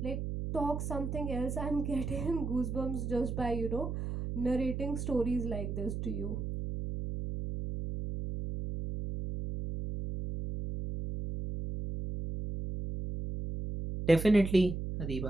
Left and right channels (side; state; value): right; noise; hum, 4 dB below the sound